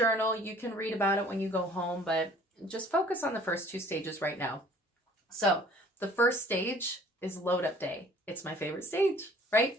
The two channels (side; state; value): both; normal; correlation 0.53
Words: you can read about it when you go home, but just focus on the first 2 stages right now. So the first stage is load up day. It's my favorite stage, right?